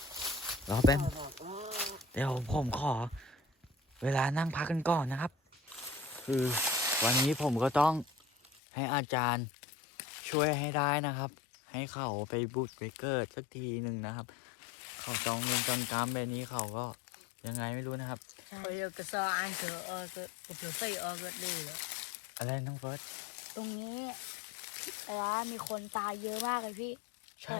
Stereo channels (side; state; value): right; drops out; at 8.6 s